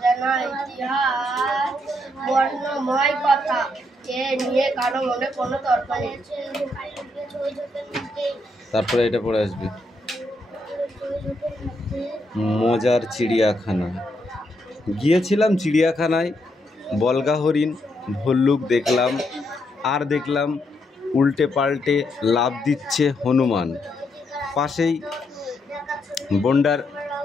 ইতিহাস, বর্ণময় কথা। এ নিয়ে কারো মনে কোনো তর্ক নেই। তারপরে এটা পড়ে আসবে, মজার চিড়িয়াখানা। গিয়েছিলাম চিড়িয়াখানায়, বলগা হরিণ ভল্লুক দেখলাম, আর দেখলাম উল্টে পাল্টে লাফ দিচ্ছে হনুমান। পাশেই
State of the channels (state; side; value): normal; both; correlation 0.78